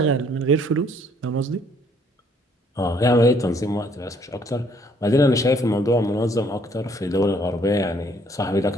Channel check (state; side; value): normal; both; correlation 0.64